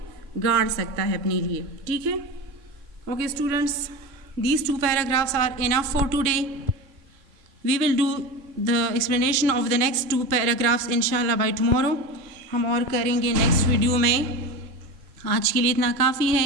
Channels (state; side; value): late; left; 3.0 ms